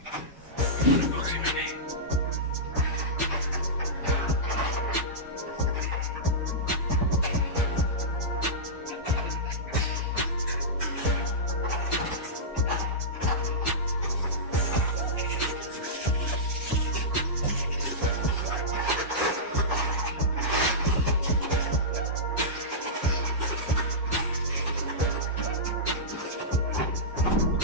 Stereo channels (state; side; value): normal; both; correlation -0.14